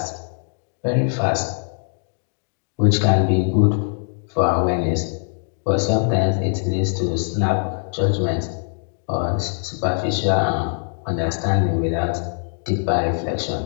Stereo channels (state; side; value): silent; right; 64 dB below the other